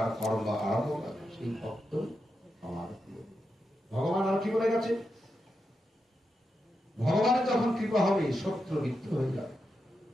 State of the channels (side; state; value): both; normal; correlation 0.87